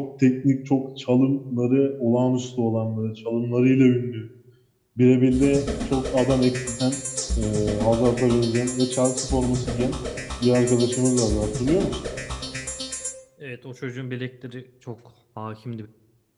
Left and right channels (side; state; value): both; identical; correlation 1.00